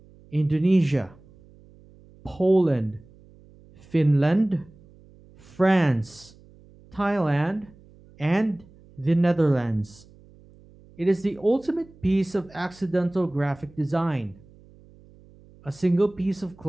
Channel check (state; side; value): noise; right; hum, 25 dB below the sound